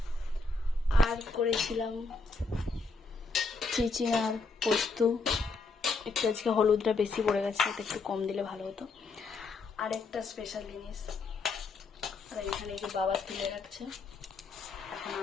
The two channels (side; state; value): right; quieter; 3.9 dB